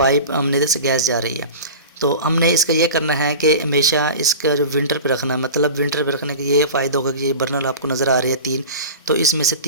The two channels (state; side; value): inverted; both; correlation -0.33